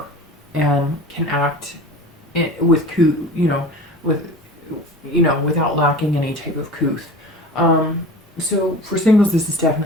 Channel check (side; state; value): both; normal; correlation 0.37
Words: and can act without lacking any type of couth. So for singles, this is